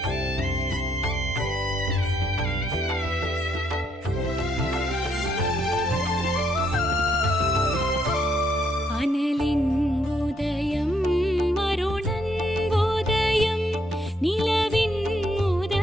அனலின் உதயம் அருணன் உதயம் நிலவின்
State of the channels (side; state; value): both; normal; correlation 0.74